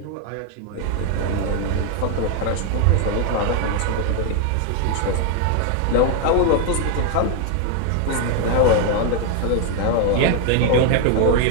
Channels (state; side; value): different; both; correlation 0.00